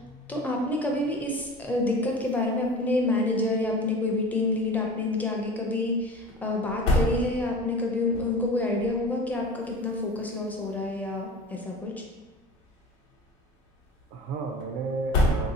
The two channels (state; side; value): normal; both; correlation 0.37